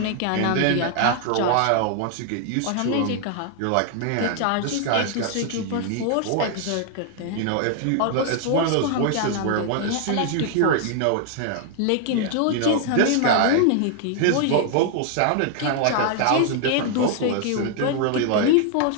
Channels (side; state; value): both; different; correlation 0.00